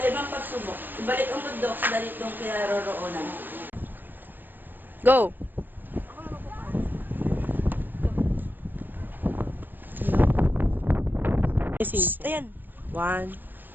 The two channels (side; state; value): left; late; 0.092 ms